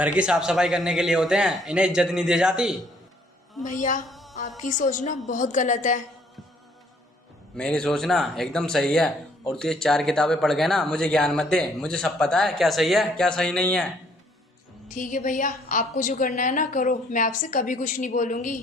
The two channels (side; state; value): both; normal; correlation 0.63